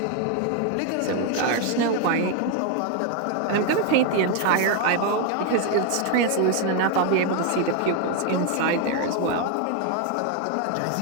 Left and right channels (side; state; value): both; different; correlation 0.01